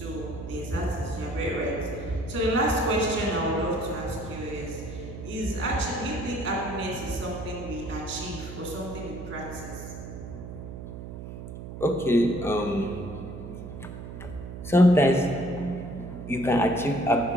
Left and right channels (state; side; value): noise; right; hum, 10 dB below the sound